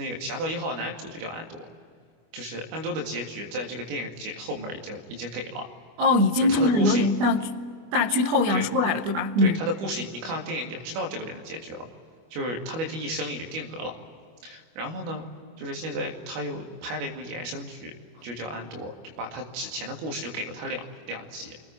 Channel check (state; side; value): late; left; 25 ms